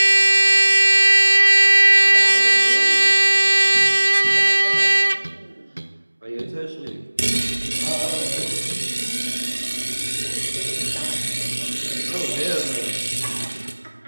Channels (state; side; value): inverted; both; correlation -1.00